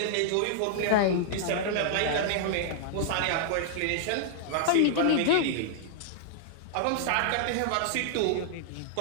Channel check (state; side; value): different; both; correlation -0.01